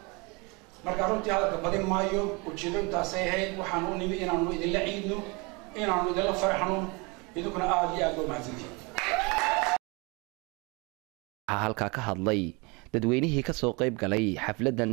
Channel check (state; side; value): quieter; left; 28.7 dB